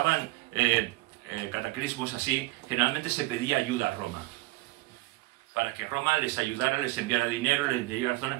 cataclismos así, generalmente se pedía ayuda a Roma, para que Roma les ayudara, les enviara dinero, les enviara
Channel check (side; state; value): left; quieter; 20.6 dB